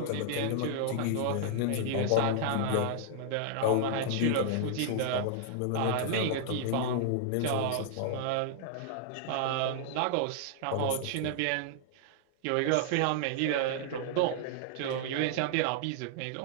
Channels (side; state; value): both; different; correlation -0.01